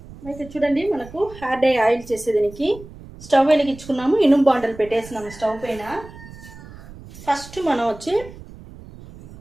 అయితే చూడండి, మనకు హెయిర్ డై ఆయిల్ చేసేదానికి స్టవ్ వెలిగించుకున్నాము, ఇనుము బాండలు పెట్టేసినాము స్టవ్ పైన. ఫస్ట్ మనం వచ్చి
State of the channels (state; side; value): noise; right; rumble, 18 dB below the sound